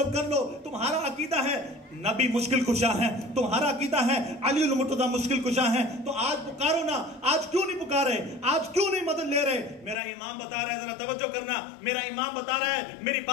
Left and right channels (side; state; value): right; drops out; at 10.0 s